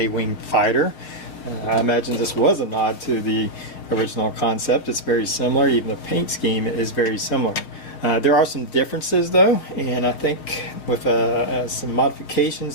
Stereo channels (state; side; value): late; right; 6.9 ms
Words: fighter. I imagine this was a nod to the original concept. It's very similar, even the paint scheme is very similar. There are some differences though, and I think with some